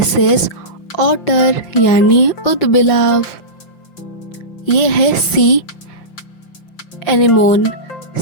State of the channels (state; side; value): late; right; 5.8 ms